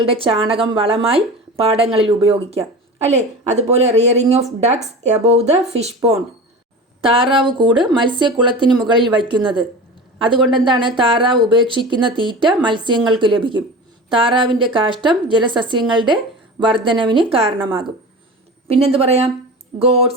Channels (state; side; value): normal; both; correlation 0.32